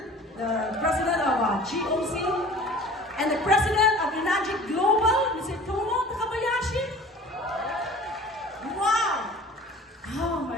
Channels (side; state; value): both; normal; correlation 0.44